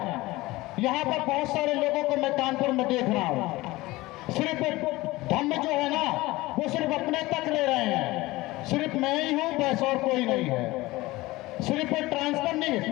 यहाँ पर बहुत सारे लोगों को मैं कानपुर में देख रहा हूँ, सिर्फ धम्म जो है ना वो सिर्फ अपने तक ले रहे हैं, सिर्फ मैं ही हूँ बस और कोई नहीं है। सिर्फ ट्रांसफर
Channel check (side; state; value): right; quieter; 19.7 dB